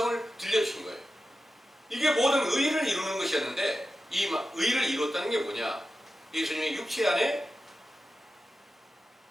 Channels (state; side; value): normal; both; correlation 0.92